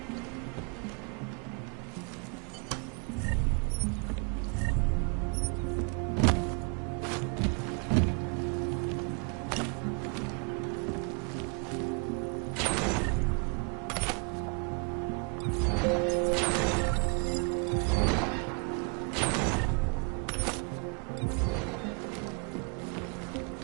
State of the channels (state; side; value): quieter; left; 36.8 dB